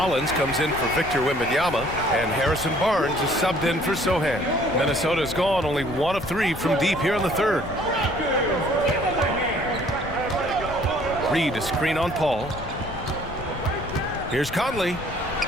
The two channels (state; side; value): noise; left; rumble, 12 dB below the sound